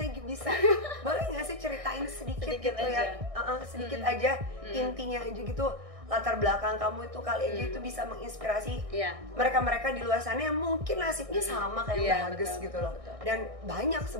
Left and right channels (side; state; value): left; late; 1.6 ms